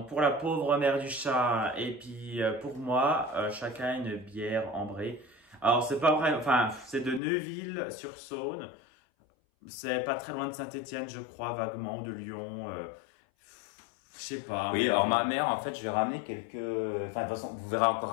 pour la pauvre mère du chat, et puis pour moi, chacun une bière ambrée. Alors, c'est pas vrai, enfin, c'est de Neuville-sur-Saône. C'est pas très loin de Saint-Étienne, je crois, vaguement, ou de Lyon. Je sais pas. Oui, alors ma mère, en fait, je vais ramener quelques... Enfin, de toute façon, vous verrez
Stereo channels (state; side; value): drops out; right; at 7.2 s